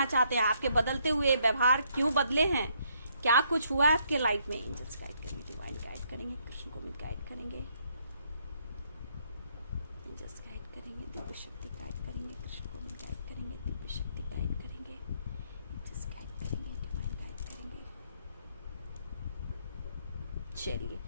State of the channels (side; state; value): both; inverted; correlation -0.71